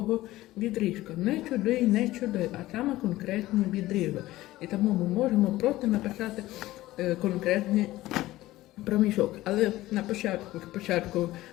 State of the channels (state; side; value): quieter; right; 16.8 dB